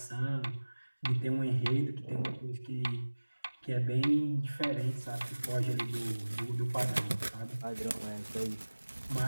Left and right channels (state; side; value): inverted; both; correlation -1.00